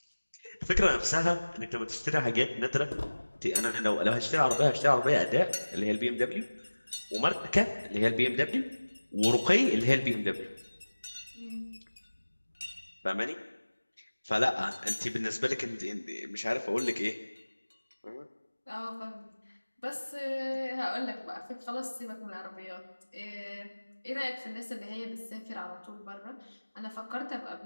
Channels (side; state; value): both; inverted; correlation -1.00